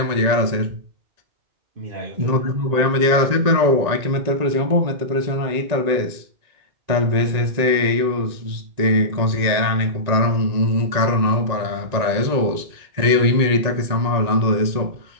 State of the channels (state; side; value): late; left; 1.9 ms